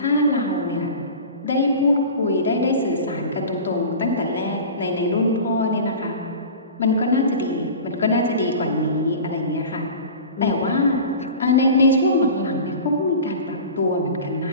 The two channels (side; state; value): both; inverted; correlation -0.36